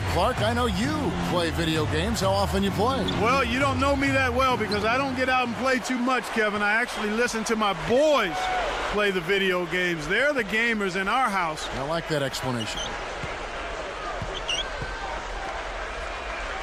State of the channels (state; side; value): identical; both; correlation 1.00